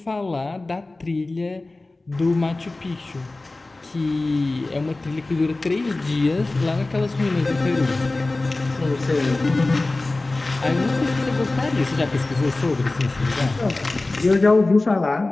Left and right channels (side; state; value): right; quieter; 3.1 dB